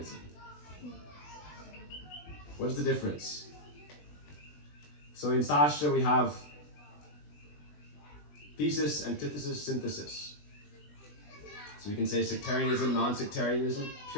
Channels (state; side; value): late; right; 20 ms